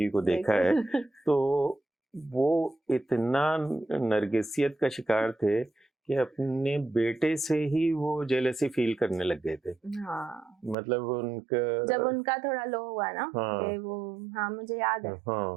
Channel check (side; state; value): left; drops out; at 10.8 s